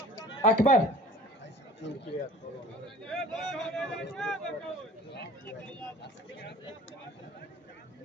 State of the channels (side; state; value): both; normal; correlation 0.46